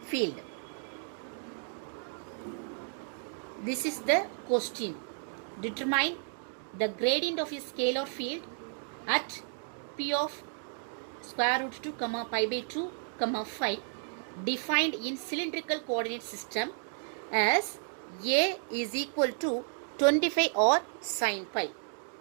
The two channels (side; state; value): left; silent; 56 dB below the other